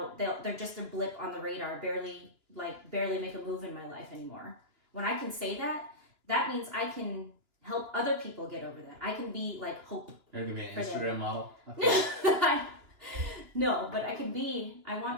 just a blip on the radar, barely make a move in my life anymore. When I can say that, that means I can help other people get over that. I can be like hope. You're gonna be an Instagram model? No, but I want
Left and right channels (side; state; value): left; late; 2.9 ms